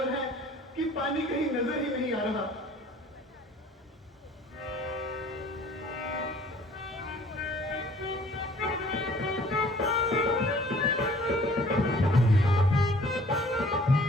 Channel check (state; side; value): normal; both; correlation 0.53